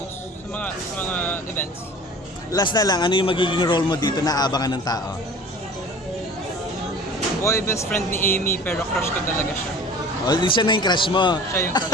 sa mga events. Last na lang, ano yung magiging role mo dito na abangan ng tao? Boy best friend ni Amy pero crush ko talaga siya. O, hindi siya na yung crush mo. Siya yung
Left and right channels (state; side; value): normal; both; correlation 0.42